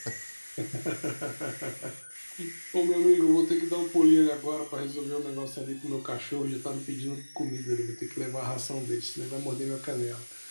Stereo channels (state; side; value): inverted; both; correlation -1.00